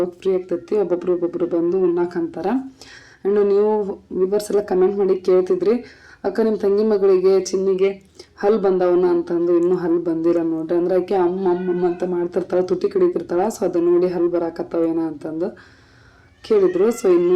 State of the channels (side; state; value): both; identical; correlation 1.00